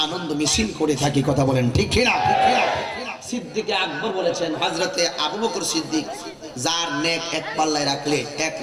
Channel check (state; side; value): identical; both; correlation 1.00